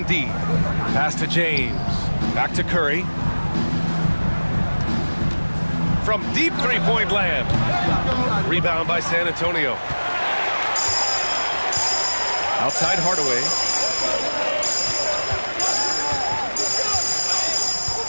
D. Pass to James. Back to Curry. From deep three-point land. Rebound by San Antonio. Outside Hardaway.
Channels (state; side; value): inverted; both; correlation -1.00